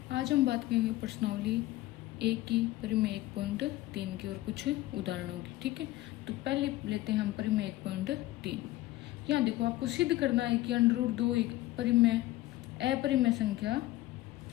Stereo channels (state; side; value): quieter; right; 16.8 dB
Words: आज हम बात करेंगे प्रश्नावली एक की परिमेय 1.3 की और कुछ उदाहरणों की। ठीक है, तो पहले लेते हैं हम परिमेय 1.3। यहाँ देखो, आपको सिद्ध करना है कि √2 एक परिमेय अपरिमेय संख्या